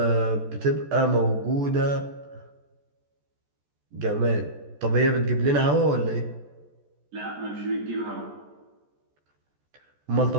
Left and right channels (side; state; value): left; late; 14 ms